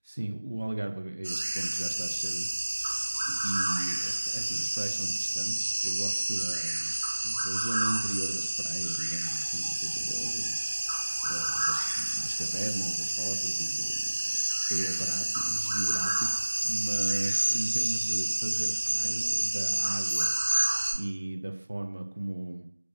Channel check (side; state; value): both; inverted; correlation -1.00